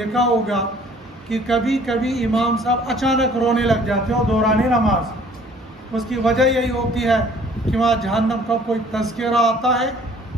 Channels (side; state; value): both; normal; correlation 0.55